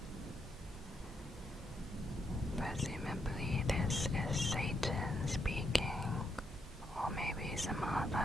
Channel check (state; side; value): normal; both; correlation 0.78